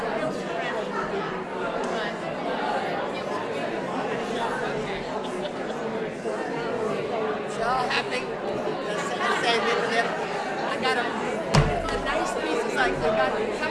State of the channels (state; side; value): identical; both; correlation 1.00